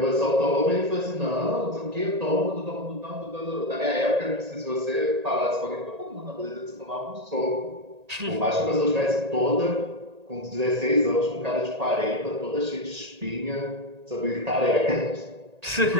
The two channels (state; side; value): late; left; 1.8 ms